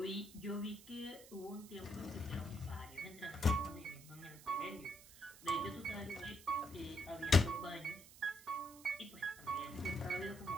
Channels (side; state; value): right; noise; hiss, 18 dB below the sound